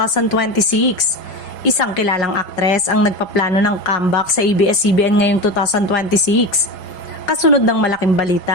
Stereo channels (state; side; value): late; right; 5.0 ms